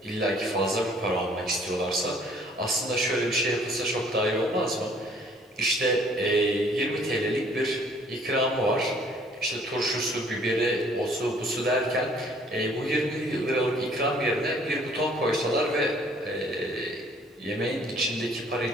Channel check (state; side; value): normal; both; correlation 0.58